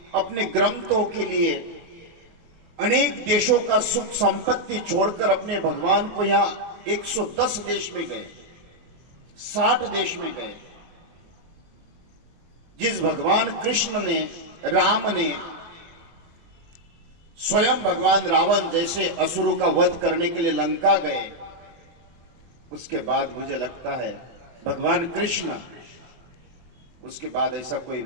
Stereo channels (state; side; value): late; left; 24 ms